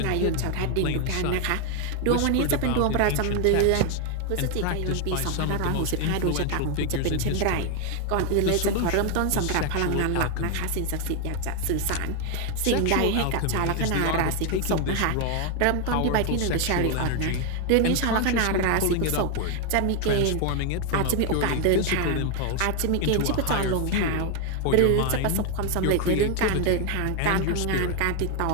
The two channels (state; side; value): different; both; correlation 0.01